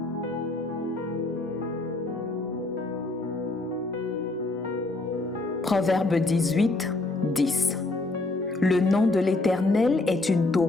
Proverbe 18, 10. Le nom de l'Éternel est une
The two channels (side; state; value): right; quieter; 3.1 dB